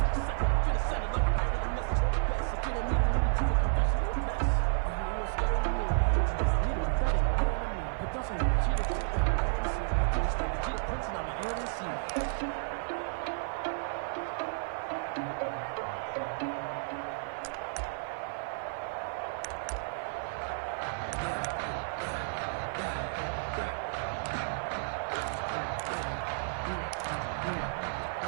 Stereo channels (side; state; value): left; silent; 56 dB below the other